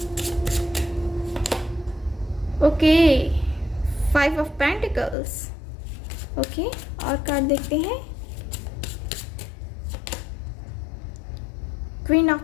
okay. 5 of pentacles, okay. और card देखते हैं, queen of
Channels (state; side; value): drops out; right; at 5.2 s